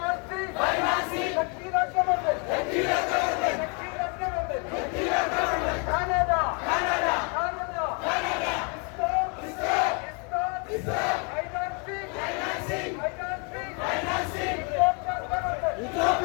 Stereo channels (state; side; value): quieter; right; 35.5 dB